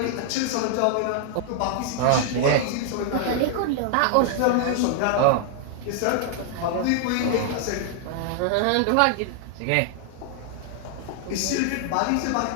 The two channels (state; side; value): different; both; correlation 0.00